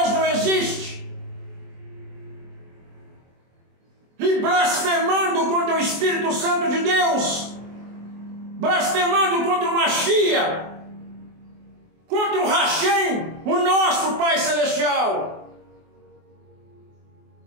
não existe, e blasfemando contra o Espírito Santo de Deus, blasfemando contra o Mashiach, contra o Hashem, o nosso Pai Celestial.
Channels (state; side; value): late; left; 24 ms